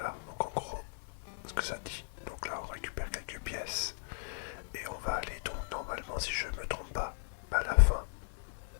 donc en gros, ce que ça dit. Donc là, on récupère quelques pièces et on va aller donc normalement, si je me trompe pas, à la fin.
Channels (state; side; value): silent; right; 53 dB below the other